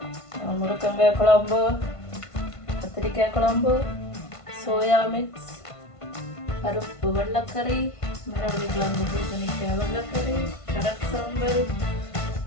முருங்கங்காய் குழம்பு, கத்திரிக்காய் குழம்பு, சோயா மிக்ஸ், பருப்பு வெள்ளைக்கறி, மரவள்ளி கிழங்கு பூசணிக்காய் வெள்ளைக்கறி, கடல் சாம்பல்,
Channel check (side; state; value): right; late; 1.5 ms